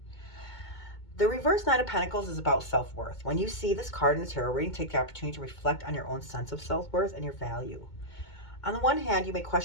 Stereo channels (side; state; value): right; late; 2.2 ms